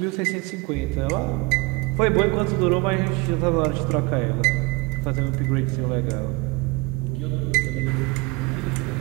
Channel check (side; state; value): left; quieter; 24.7 dB